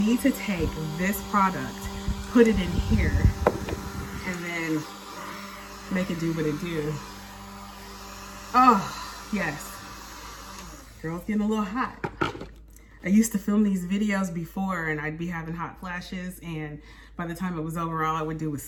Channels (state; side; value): identical; both; correlation 1.00